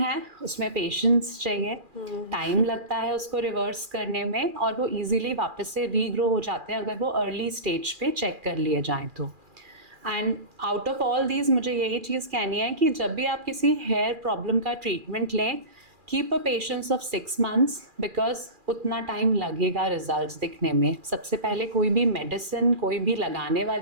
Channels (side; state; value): left; late; 2.4 ms